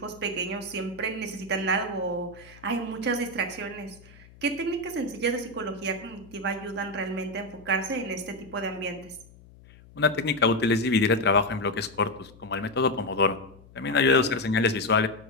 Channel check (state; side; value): noise; left; hum, 23 dB below the sound